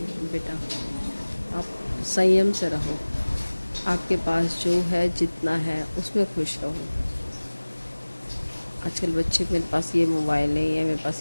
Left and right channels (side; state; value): both; inverted; correlation -1.00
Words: बेटा आप संयम से रहो, आपके पास जो है जितना है उसमें खुश रहो? आजकल बच्चे मेरे पास ये मोबाइल नहीं है, मेरे पास